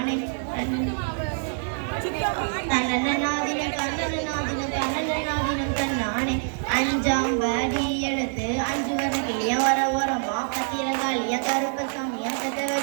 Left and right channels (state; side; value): silent; left; 61 dB below the other